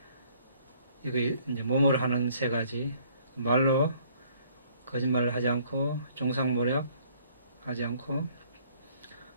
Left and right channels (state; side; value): inverted; both; correlation -0.60